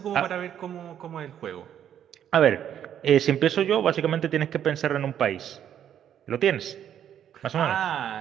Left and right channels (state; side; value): quieter; left; 9.8 dB